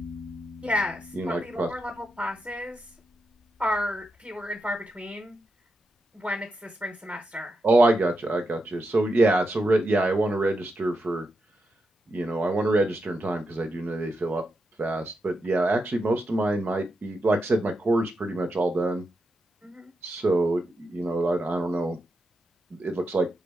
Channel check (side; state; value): both; normal; correlation 0.86